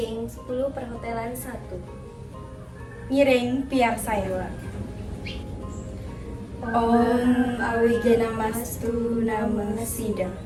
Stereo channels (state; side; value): identical; both; correlation 1.00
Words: 10 perhotelan 1. Ngiring piar saya. Om Awigena Mastu Nama Sidang.